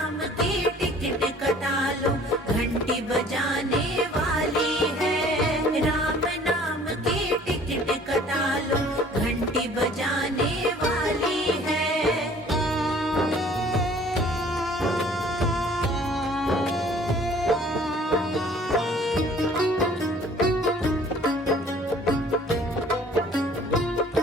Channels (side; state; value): both; normal; correlation 0.53